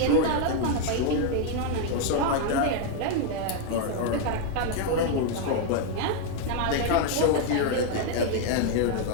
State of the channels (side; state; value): both; different; correlation 0.00